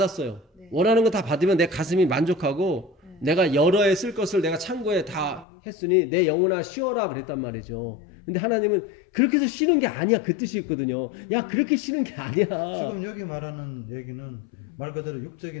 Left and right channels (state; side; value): drops out; right; at 5.5 s